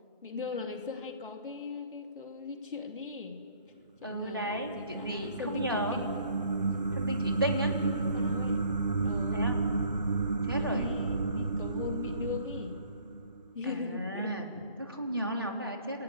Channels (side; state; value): both; inverted; correlation -0.58